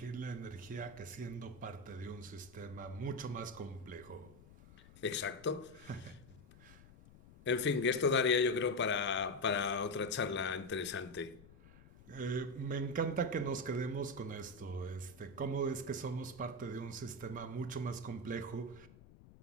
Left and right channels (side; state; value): left; noise; rumble, 21 dB below the sound